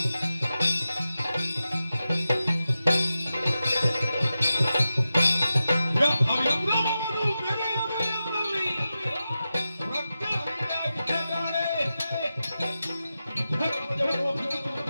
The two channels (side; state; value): both; inverted; correlation -0.92